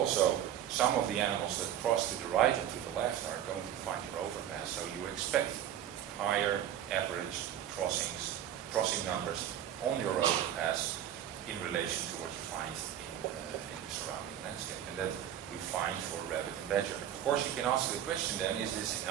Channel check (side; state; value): left; quieter; 10.6 dB